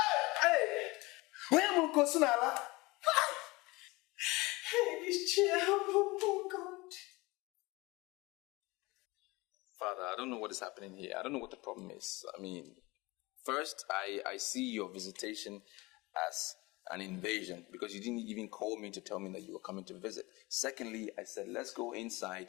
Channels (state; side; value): quieter; right; 22.8 dB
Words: am I? Hey, this chair, oh God. Father, I don't know what is happening here. I don't know what the problem is. I mean, first, I see your visitation as an invasion because you didn't even call me to tell me that you were coming to visit. Secondly, I said, let's go